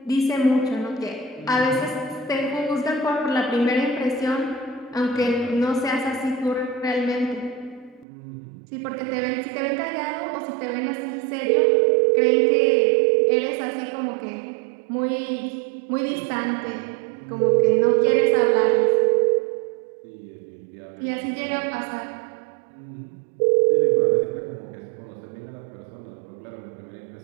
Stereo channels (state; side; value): drops out; left; at 8.1 s